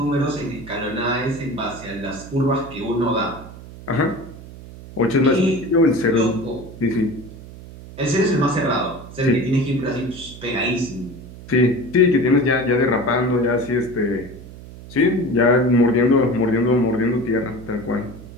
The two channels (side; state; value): right; noise; hum, 16 dB below the sound